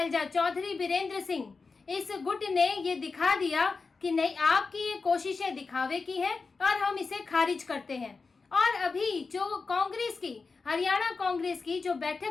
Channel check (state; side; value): quieter; right; 4.4 dB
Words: चौधरी बीरेंद्र सिंह, इस गुट ने ये दिखा दिया कि नहीं, आपकी ये कोशिशें दिखावे की है और हम इसे खारिज करते हैं। और अभी जो कांग्रेस की, हरियाणा कांग्रेस की जो